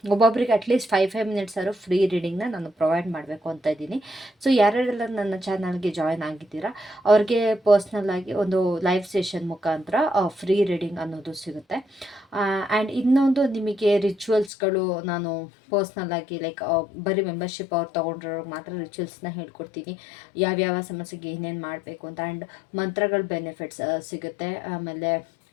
ಒಬ್ಬೊಬ್ಬರಿಗೆ ಅಟ್ಲೀಸ್ಟ್ 5 ಮಿನಿಟ್ಸ್ ಆದರೂ ಫ್ರೀ ರೀಡಿಂಗ್ನ ನಾನು ಪ್ರೊವೈಡ್ ಮಾಡಬೇಕು ಅಂತ ಇದ್ದೀನಿ. ಸೊ ಯಾರ್ಯಾರೆಲ್ಲ ನನ್ನ ಚಾನಲ್ಗೆ ಜಾಯ್ನ್ ಆಗಿದ್ದೀರಾ ಅವ್ರಿಗೆ ಪರ್ಸ್ನಲ್ ಆಗಿ ಒಂದು ಲೈವ್ ಸೆಷನ್ ಮುಖಾಂತರ ಫ್ರೀ ರೀಡಿಂಗ್ ಅನ್ನೋದು ಸಿಗುತ್ತೆ. ಆ್ಯಂಡ್ ಇನ್ನೊಂದು ನಿಮಗೆ ರಿಚುವಲ್ಸ್ಗಳು ನಾನು ಪರ್ಸ್ನಲ್ ಆಗಿ ಲೈಕ್ ಬರೀ ಮೆಂಬರ್ಶಿಪ್ ಅವ್ರು ತೊಗೊಂಡ್ರವ್ರಿಗೆ ಮಾತ್ರ ರಿಚುವಲ್ಸ್ನ ಹೇಳ್ಕೊಡ್ತೀನಿ, ಯಾವ್ಯಾವ ಸಮಸ್ಯೆಗೆ ಏನೇನು ಮಾಡಬೇಕು ಅಂತ. ಆ್ಯಂಡ್ ಮಂತ್ರಗಳ ಬೆನಿಫಿಟ್ಸ್ ಸಿಗುತ್ತೆ. ಆಮೇಲೆ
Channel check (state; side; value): drops out; right; at 14.5 s